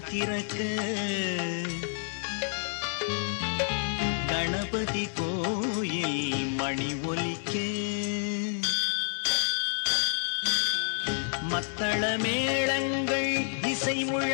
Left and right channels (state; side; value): silent; right; 58 dB below the other